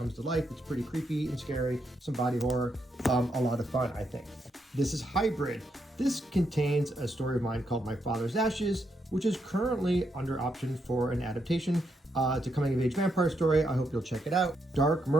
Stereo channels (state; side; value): normal; both; correlation 0.79